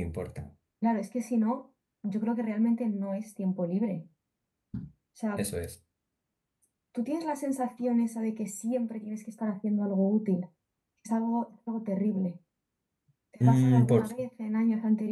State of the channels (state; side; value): identical; both; correlation 1.00